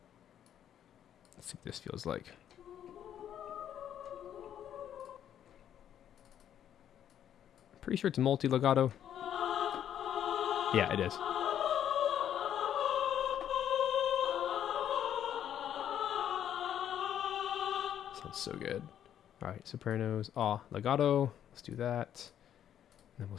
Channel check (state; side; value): quieter; right; 10.1 dB